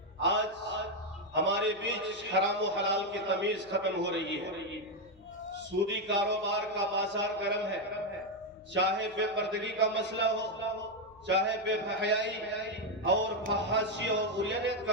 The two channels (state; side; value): noise; left; hum, 27 dB below the sound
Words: آج ہمارے بیچ حرام و حلال کی تمیز ختم ہو رہی ہے. سودی کاروبار کا بازار گرم ہے. چاہے بے پردگی کا مسئلہ ہو، چاہے بے حیائی اور فحاشی اور عریانیت